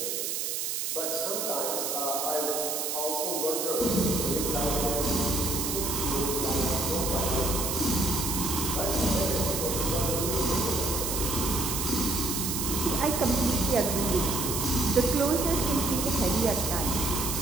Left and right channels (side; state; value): right; noise; hiss, 1 dB below the sound